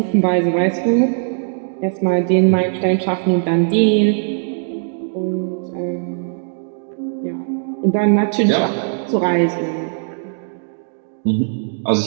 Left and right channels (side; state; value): left; silent; digital silence